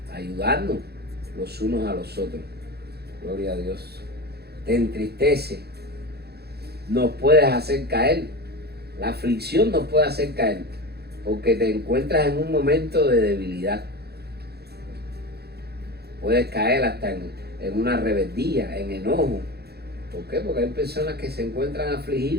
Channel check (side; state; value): left; late; 0.47 ms